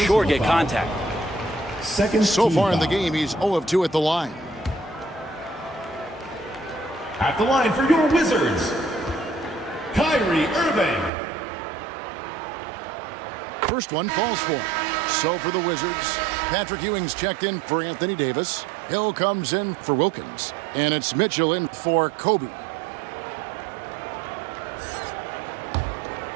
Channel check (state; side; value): drops out; left; at 11.1 s